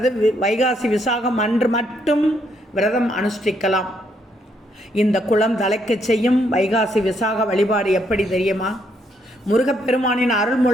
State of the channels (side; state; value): both; normal; correlation 0.73